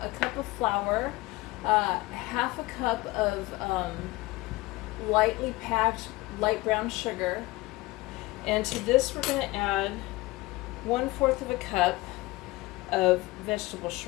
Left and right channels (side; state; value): right; quieter; 20.6 dB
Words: a cup of flour, half a cup of lightly packed light brown sugar, and to this we're going to add 1/4 of a cup of vegetable